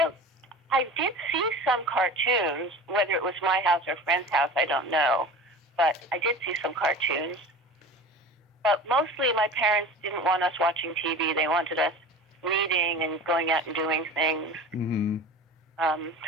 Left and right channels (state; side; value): normal; both; correlation 0.35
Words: see some cartoons, whether it was my house or a friend's house, I don't know. But I did see some cartoons. But mostly my parents didn't want us watching TV. They wanted us reading and going out and doing things. Mm-hmm.